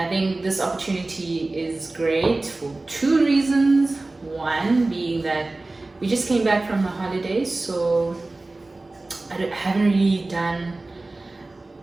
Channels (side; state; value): left; quieter; 3.1 dB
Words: think this opportunity is great for two reasons. One being that we just came back from the holidays, so haven't really done